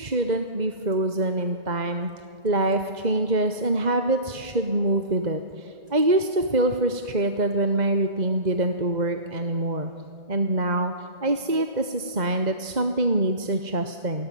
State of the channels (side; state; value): left; late; 2.0 ms